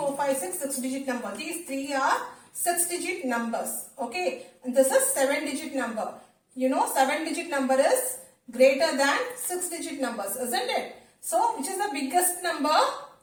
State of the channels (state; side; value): identical; both; correlation 1.00